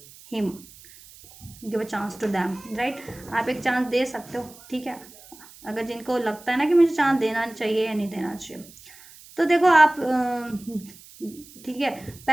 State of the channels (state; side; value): noise; right; hiss, 21 dB below the sound